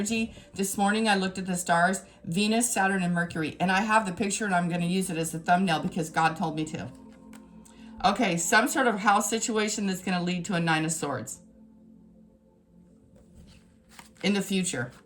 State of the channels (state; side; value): identical; both; correlation 1.00